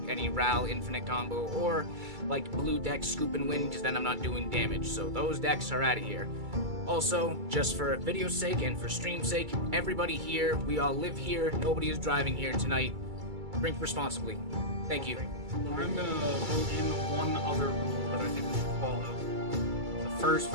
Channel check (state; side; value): late; left; 2.3 ms